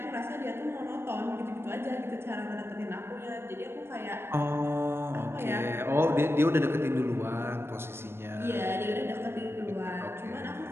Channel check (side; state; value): left; late; 0.12 ms